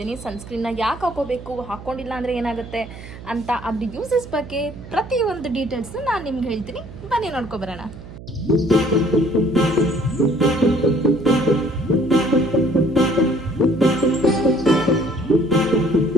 ಸನ್ಸ್ಕ್ರೀನ್ನ ಯಾಕೆ ಹಾಕೋಬೇಕು, ಹಾಕ್ಕೊಂಡಿಲ್ಲ ಅಂದರೆ ಏನಾಗುತ್ತೆ ಅಂತ, ಅದ್ರ ಯೂಸಸ್ ಬಗ್ಗೆ ಪ್ರತಿಯೊಂದು ಡೀಟೇಲ್ಸ್ನು ನಾನು ನಿಮ್ಗೆ ಹೇಳ್ತೀನಿ. ಬನ್ನಿ ನೋಡ್ಕೊಬರೋಣ.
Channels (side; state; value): right; noise; hum, 15 dB below the sound